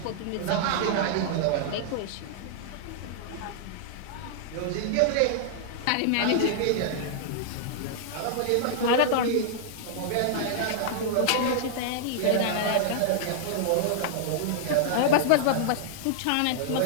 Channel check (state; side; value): different; both; correlation -0.01